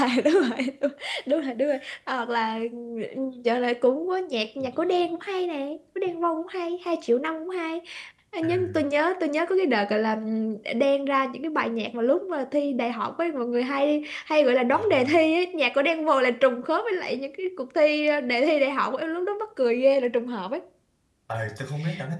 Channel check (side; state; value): both; identical; correlation 1.00